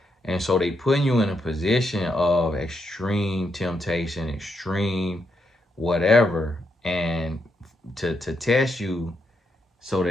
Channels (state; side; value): normal; both; correlation 0.80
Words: And so they putting you in a position of extreme temptation, extreme whatever, and to test you so